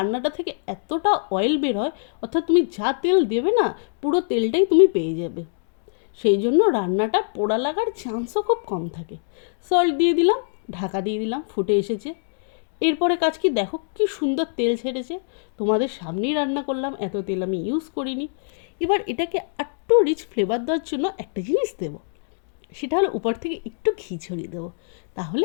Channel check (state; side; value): silent; right; digital silence